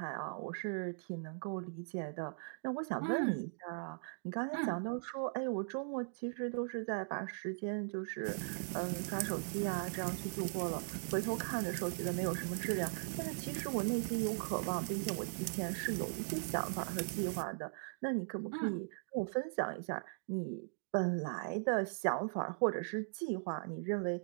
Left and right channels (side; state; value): left; silent; digital silence